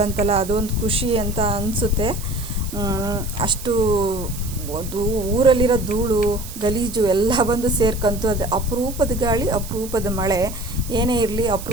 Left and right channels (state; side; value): noise; right; hiss, 13 dB below the sound